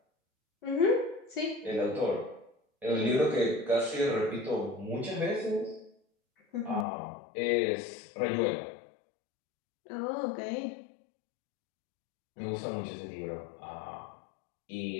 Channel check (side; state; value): right; drops out; at 6.9 s